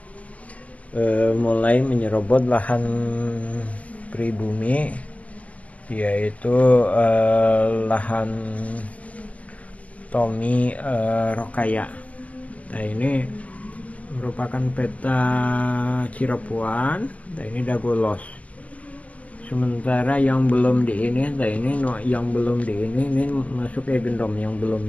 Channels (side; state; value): right; late; 0.067 ms